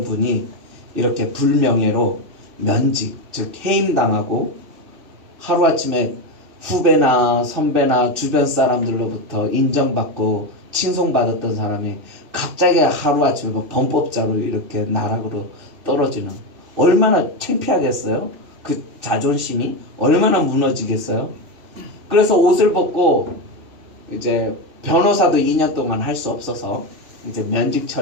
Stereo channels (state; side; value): late; left; 2.7 ms